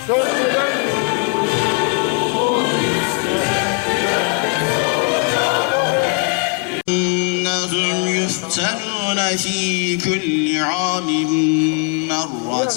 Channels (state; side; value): quieter; right; 34.0 dB